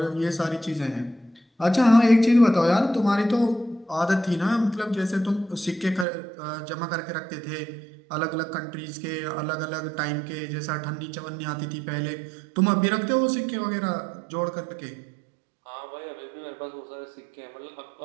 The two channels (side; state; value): left; drops out; at 6.1 s